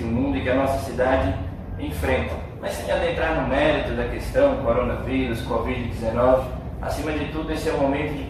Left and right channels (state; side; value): identical; both; correlation 1.00